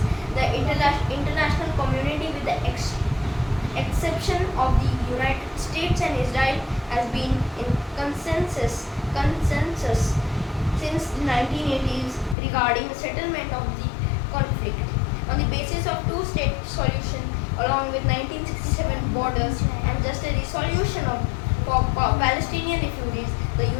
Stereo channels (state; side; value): drops out; right; at 12.4 s